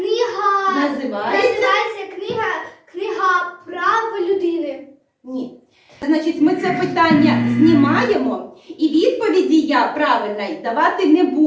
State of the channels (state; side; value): identical; both; correlation 1.00